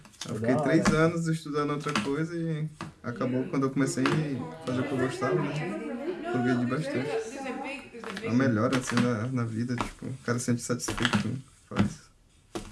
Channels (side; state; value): both; identical; correlation 1.00